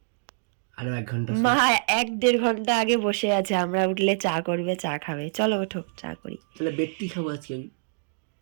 আরো 1 ঘন্টা। মা 1-1.5 ঘন্টা আগে বসে আছে, আমরা উঠলে চা করবে, চা খাবে। চলো ওঠো, চা করি। তাহলে বেডটি খাবো আজকে আমি।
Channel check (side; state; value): left; silent; digital silence